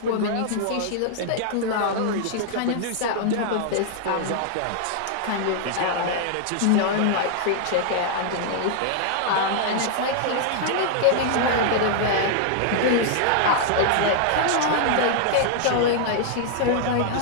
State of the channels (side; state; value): both; different; correlation -0.01